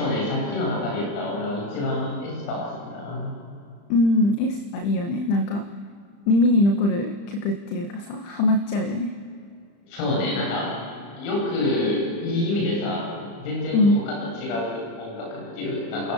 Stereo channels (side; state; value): right; late; 35 ms